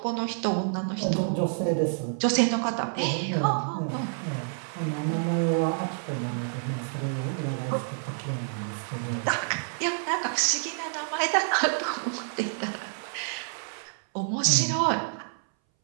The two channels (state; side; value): silent; left; 59 dB below the other